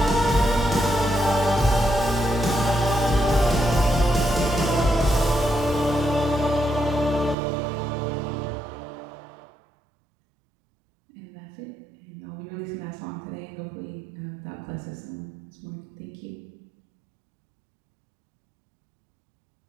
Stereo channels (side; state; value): left; drops out; at 7.4 s